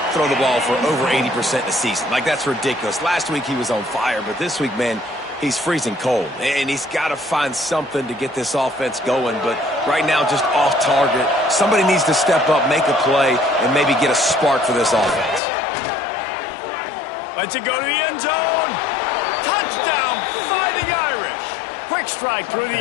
throw the ball for over 80% a season. Like, that's ridiculous. Last week he was on fire, but this week, man, he's freezing cold. And he's got to find something to get this offense going. But right now, just off target. Somebody needs to step up, make a play, and maybe get a spark for this offense. Lets it go to the end zone. Touchdown, Fighting Irish. Quick strike through the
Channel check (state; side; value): drops out; right; at 15.4 s